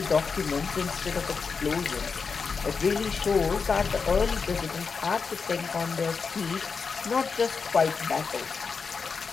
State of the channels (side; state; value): right; quieter; 5.2 dB